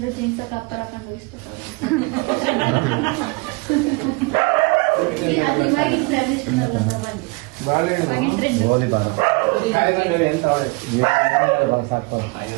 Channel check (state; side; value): quieter; left; 28.0 dB